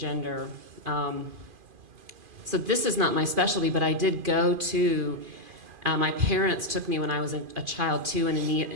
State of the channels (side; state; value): left; late; 2.5 ms